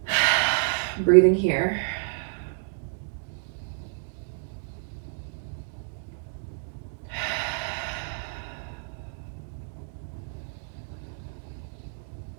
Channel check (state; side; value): silent; left; digital silence